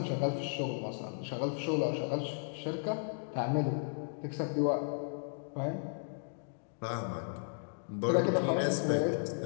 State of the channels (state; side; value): silent; right; digital silence